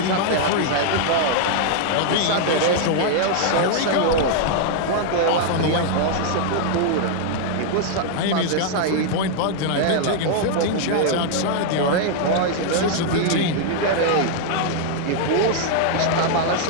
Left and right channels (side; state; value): both; different; correlation 0.00